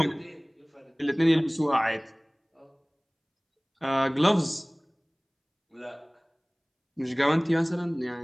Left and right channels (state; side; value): identical; both; correlation 1.00